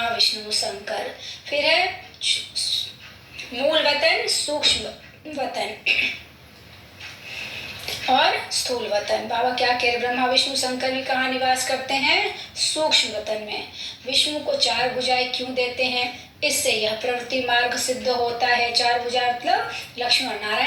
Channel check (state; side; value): identical; both; correlation 1.00